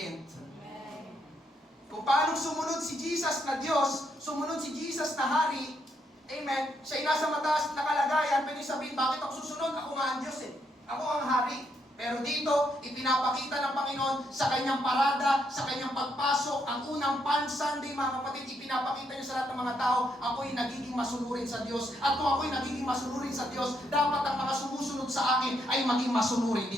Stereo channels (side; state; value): both; normal; correlation 0.76